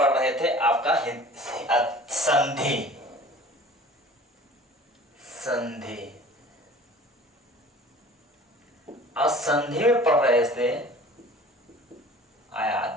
रहे थे आपका संधि। संधि और संधि में पढ़ रहे थे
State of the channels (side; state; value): both; normal; correlation 0.45